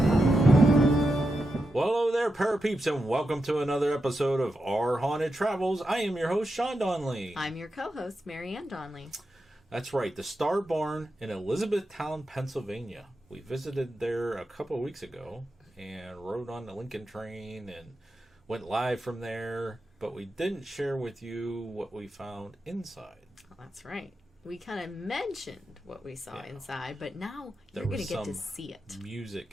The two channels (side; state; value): both; normal; correlation 0.88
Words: Well, hello there, Parapeeps, and welcome to another episode of Our Haunted Travels. I am your host, Sean Donnelly. I'm your co-host, Marianne Donnelly. That's right, the Star Barn in Elizabethtown, Pennsylvania. We visited there a couple of weeks ago and rode on the Lincoln train and went live from there, but we didn't share with you what we found inside. Oh, that's right. We kind of mentioned what we saw inside, but now you're going to get to see it. Music